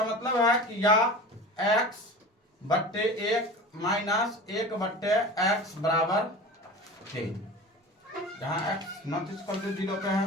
मतलब है कि या x/1 माइनस 1/x बराबर 3, जहाँ x नॉट इक्वल टू 0 पे है।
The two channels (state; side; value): normal; both; correlation 0.34